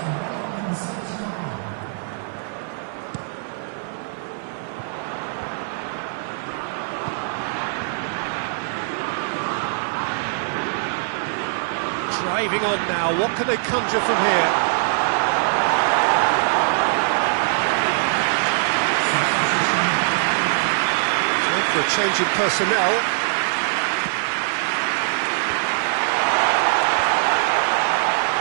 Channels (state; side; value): silent; left; 58 dB below the other